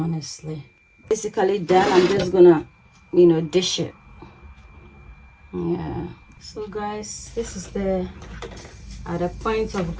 Basically done. I'm just gonna, you know, dish it. Yeah. So guys, this is the at the point of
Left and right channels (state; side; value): identical; both; correlation 1.00